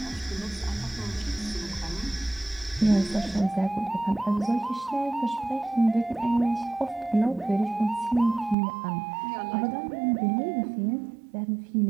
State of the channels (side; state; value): left; drops out; at 8.6 s